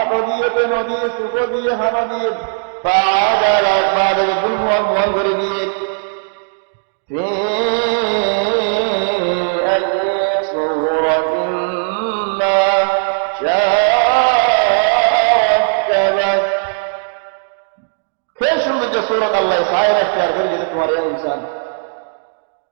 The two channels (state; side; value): silent; left; digital silence